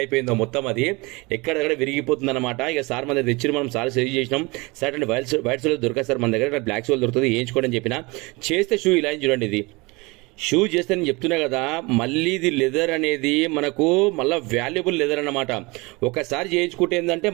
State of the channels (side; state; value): left; quieter; 25.3 dB